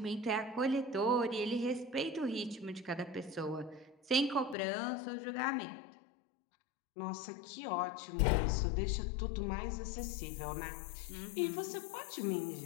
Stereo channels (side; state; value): right; drops out; at 4.5 s